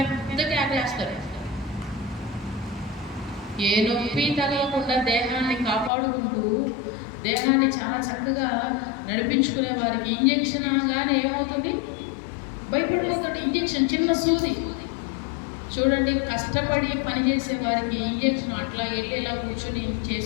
ఆగేస్తారు. ఏ నొప్పి తగలకుండా దేహాన్ని కాపాడుకుంటూ దేహాన్ని చాలా చక్కగా నడిపించుకునే వారికి ఇంజెక్షన్ అనగానే ఏమవుతుంది? భయపడిపోతాడు. ఇంజెక్షన్ చిన్న సూది. చూడండి, కష్టపడి పనిచేసే వారికి ఇంజెక్షన్ అట్లా వెళ్ళి ఇలా కూర్చొని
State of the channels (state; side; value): drops out; right; at 5.9 s